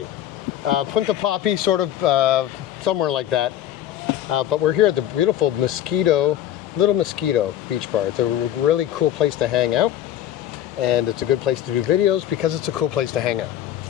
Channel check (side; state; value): right; quieter; 11.7 dB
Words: Punta Poppy, sort of somewhere like that. But we're here at the beautiful Little Mosquito Beach Bar. It's a really cool place to hang out. And it's a good place to do videos because it's a cool place to hang out.